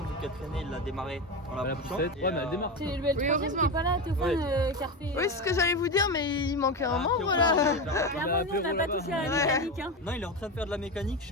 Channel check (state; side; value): normal; both; correlation 0.18